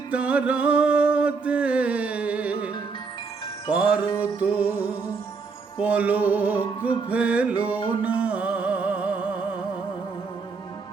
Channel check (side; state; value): left; quieter; 4.8 dB